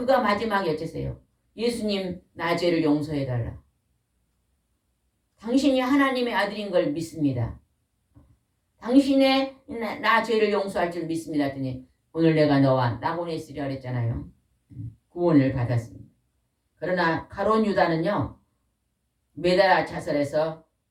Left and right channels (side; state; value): both; identical; correlation 1.00